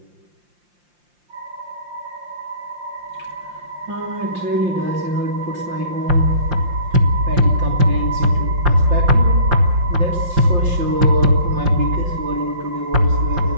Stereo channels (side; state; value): left; late; 5.7 ms